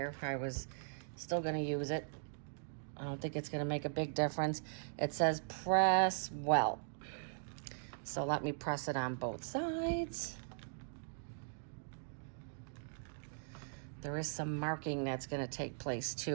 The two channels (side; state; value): left; silent; digital silence